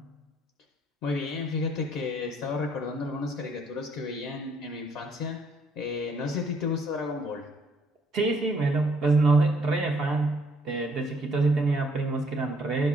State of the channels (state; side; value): normal; both; correlation 0.66